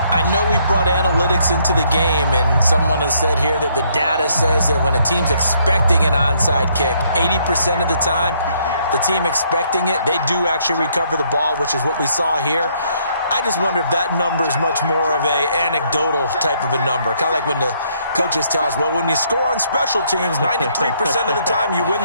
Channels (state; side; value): inverted; both; correlation -0.69